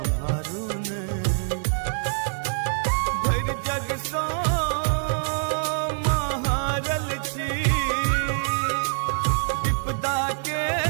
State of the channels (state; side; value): silent; left; 62 dB below the other